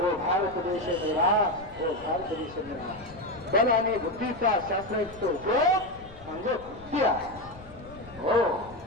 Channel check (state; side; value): noise; left; rumble, 20 dB below the sound